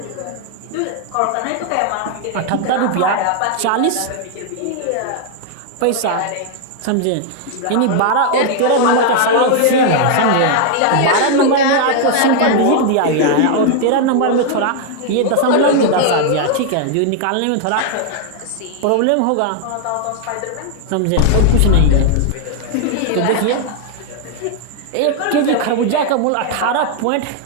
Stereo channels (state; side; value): different; both; correlation 0.00